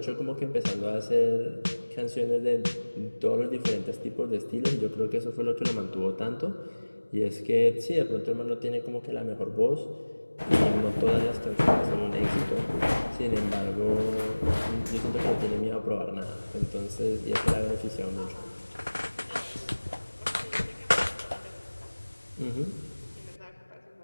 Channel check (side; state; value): both; inverted; correlation -1.00